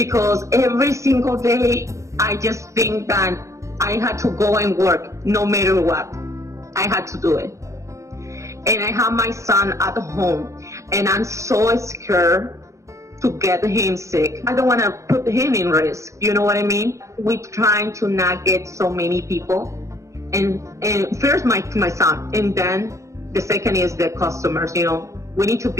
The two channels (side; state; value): left; late; 0.15 ms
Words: every single day I just think that I had to go and work no matter what. I had to do it. And I have my son at home, and I'm so scared to get him sick. I don't want to put him in risk. You know what I mean? We're trying to not get so many people. And first my son, and then the second is the customers. We need to